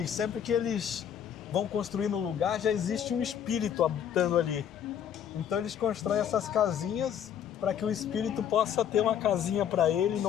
sempre que eles vão construir no lugar, já existe um espírito habitando ali. Então eles constroem essas casinhas para que o espírito possa ter uma casinha para ele e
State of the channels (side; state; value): right; quieter; 9.0 dB